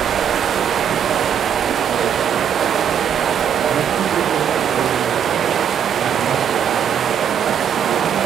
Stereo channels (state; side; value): quieter; left; 8.4 dB